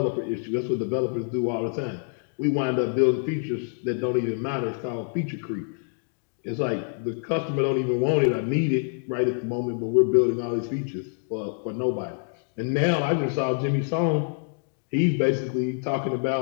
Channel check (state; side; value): silent; right; digital silence